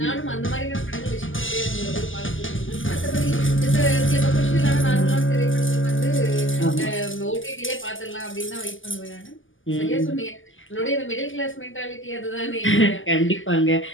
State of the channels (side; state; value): right; late; 0.58 ms